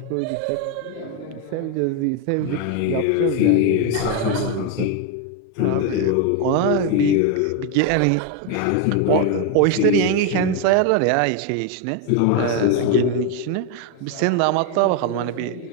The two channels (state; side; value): different; both; correlation 0.01